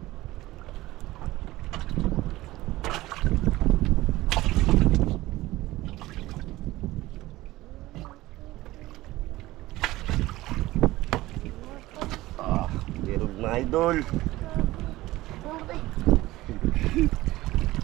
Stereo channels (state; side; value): quieter; left; 17.7 dB